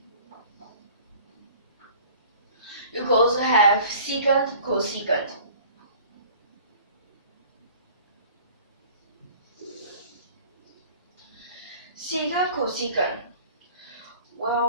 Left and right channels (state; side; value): inverted; both; correlation -0.47